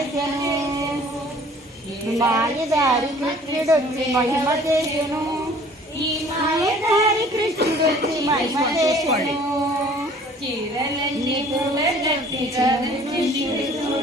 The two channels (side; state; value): both; normal; correlation 0.52